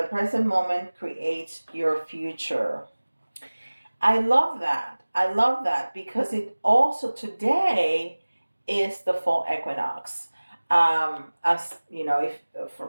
present moment creates your future. I love that. I love that because it also today is the fall equinox. As you know, if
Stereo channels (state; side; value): inverted; both; correlation -1.00